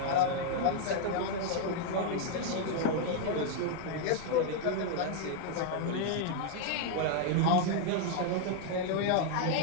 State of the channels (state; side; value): different; both; correlation 0.00